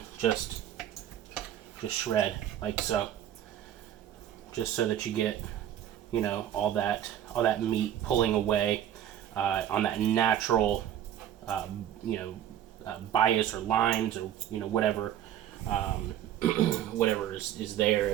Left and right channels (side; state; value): left; quieter; 11.0 dB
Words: just shred like so, just so that you get all that meat pulling away on that natural bias or lines or whatever whatever is there.